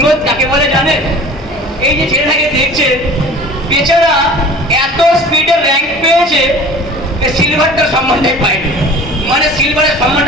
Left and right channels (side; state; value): both; normal; correlation 0.42